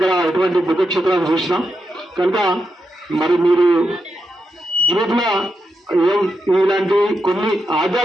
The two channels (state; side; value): normal; both; correlation 0.85